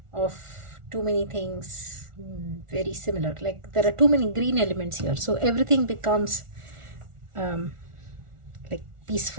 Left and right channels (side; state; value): left; late; 1.4 ms